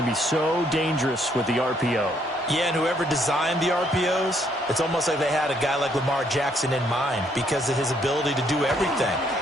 be so dangerous with the RPO. Yeah, and whoever designed the RPOs, it's almost like they had a guy like Lamar Jackson in mind because of his ability to do everything.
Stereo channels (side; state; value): both; normal; correlation 0.69